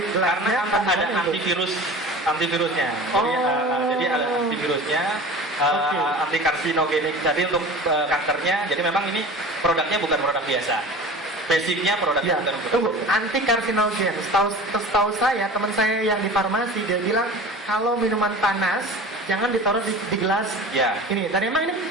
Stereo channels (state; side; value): normal; both; correlation 0.37